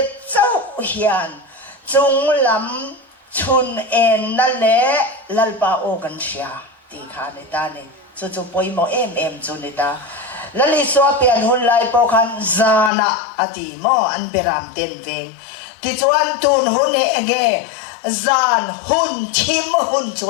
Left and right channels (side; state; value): right; drops out; at 12.9 s